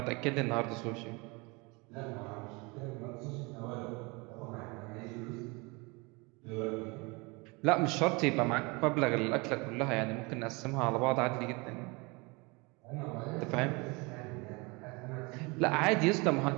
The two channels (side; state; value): left; quieter; 27.2 dB